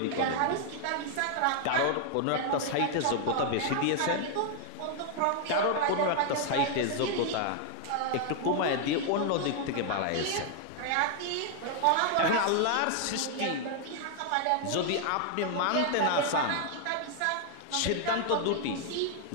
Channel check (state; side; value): different; both; correlation 0.00